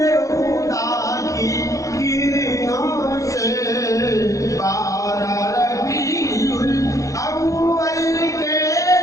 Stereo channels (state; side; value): late; right; 0.16 ms